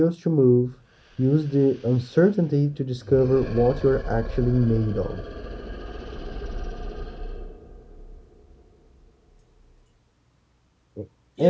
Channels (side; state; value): both; identical; correlation 1.00